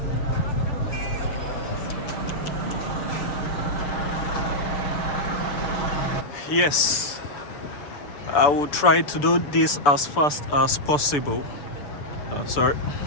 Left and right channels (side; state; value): right; late; 6.9 ms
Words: Yes, I will try to do this as fast as possible. As